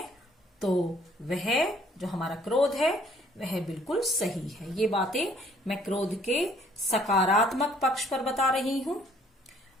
तो वह जो हमारा क्रोध है वह बिल्कुल सही है। ये बातें मैं क्रोध के सकारात्मक पक्ष पर बता रही हूं।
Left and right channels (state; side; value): normal; both; correlation 0.61